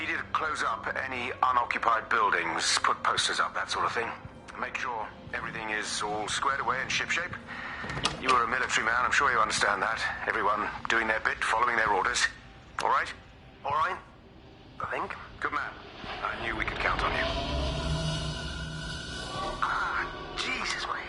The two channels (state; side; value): identical; both; correlation 1.00